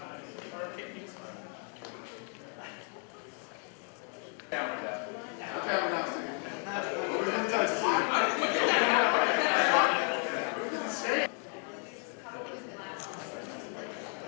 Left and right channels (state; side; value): quieter; right; 39.6 dB